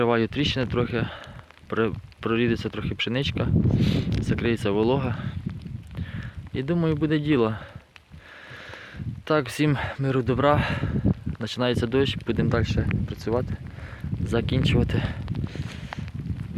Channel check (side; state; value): both; identical; correlation 1.00